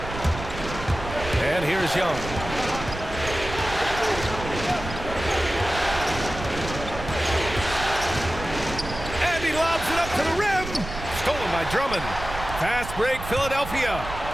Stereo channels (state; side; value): noise; right; rumble, 9 dB below the sound